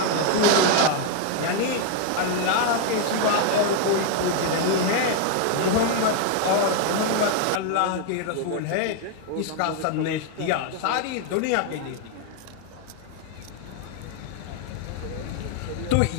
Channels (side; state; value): both; different; correlation 0.01